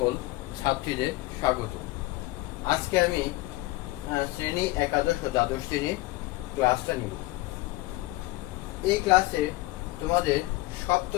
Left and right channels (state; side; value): quieter; right; 19.9 dB